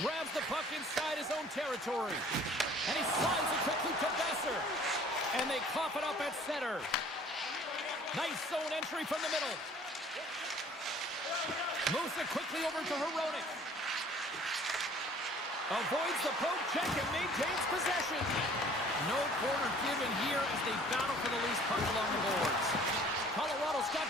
grabs the puck inside his own territory. And he slides it quickly to Besser. And they cough it up at center. Nice zone entry from the middle. Moves it quickly over to Hronek. Avoids the poke check and maintains possession. No corner given here as they battle for the loose puck along the boards. Colorado's got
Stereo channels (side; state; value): both; normal; correlation 0.52